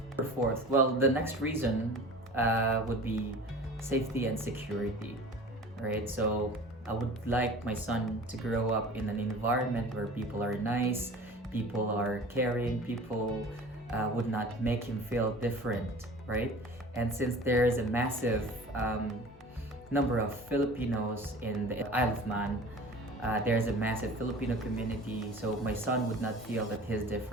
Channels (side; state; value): both; normal; correlation 0.41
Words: Fourth, well, the next reason would be safety and security, right? So I would like my son to grow up in an environment where people are nice, people are caring, people would not make him feel different, right? And since there's a massive number of Filipinos in the Isle of Man, There's a massive Filipino community, so my son would not feel that he's